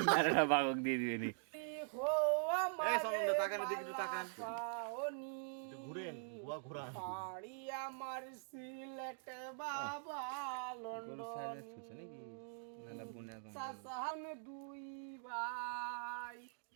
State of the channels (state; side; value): silent; left; digital silence